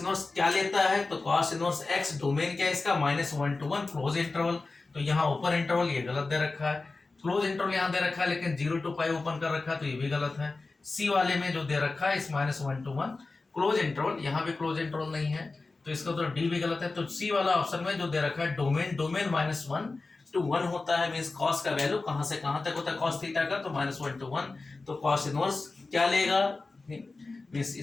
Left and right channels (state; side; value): quieter; right; 3.6 dB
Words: क्या लेता है, तो कॉस इनवर्स x, डोमेन क्या है इसका -1 to 1 क्लोज इंटरवल। तो यहाँ ओपन इंटरवल ये गलत दे रखा है, क्लोज इंटरवल यहाँ दे रखा है लेकिन 0 to π ओपन कर रखा है, तो ये भी गलत है। सी वाले में जो दे रखा है इस -1 to 1 क्लोज इंटरवल, यहाँ भी क्लोज इंटरवल नहीं है, तो इसका तो डी भी गलत है। तो सी वाला ऑप्शन में जो दे रखा है डोमेन -1 to 1 होता है, मींस कॉस का वैल्यू कहां से कहां तक होता है कॉस थीटा का, तो -1 to 1। तो कॉस इनवर्स क्या लेगा, मींस